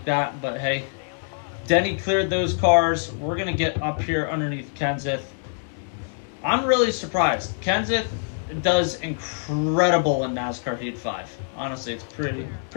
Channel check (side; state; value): right; silent; digital silence